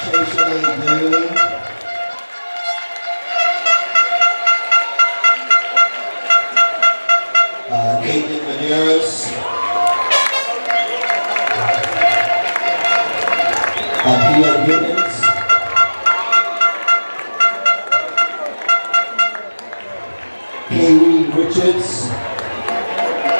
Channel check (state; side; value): inverted; both; correlation -1.00